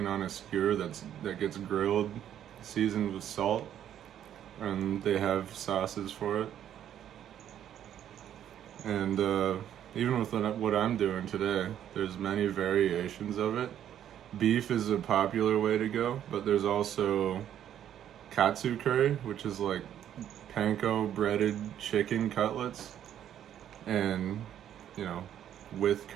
on a skewer that gets grilled, seasoned with salt, and they have sauces for it. And even with what I'm doing today, there's many variations of it. Beef is a popular way to go, but there's also katsu curry, which is like panko breaded chicken cutlets, and, you know, with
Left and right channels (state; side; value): quieter; left; 10.4 dB